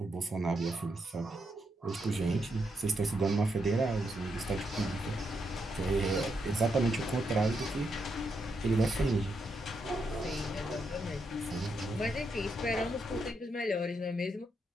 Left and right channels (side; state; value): both; normal; correlation 0.81